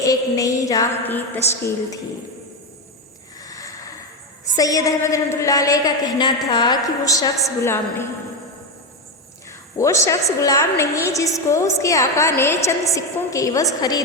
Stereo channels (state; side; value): normal; both; correlation 0.11